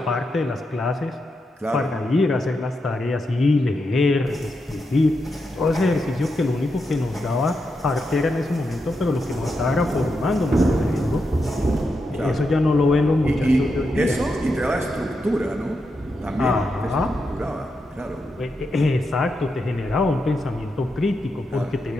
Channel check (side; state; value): both; normal; correlation 0.85